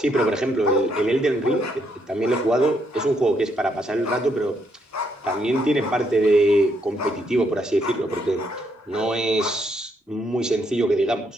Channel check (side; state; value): both; normal; correlation 0.74